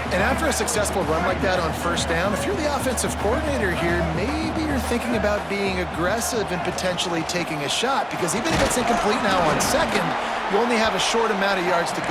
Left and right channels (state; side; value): identical; both; correlation 1.00